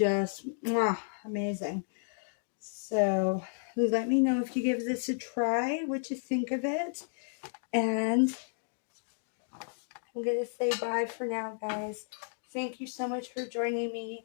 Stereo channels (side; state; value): right; silent; digital silence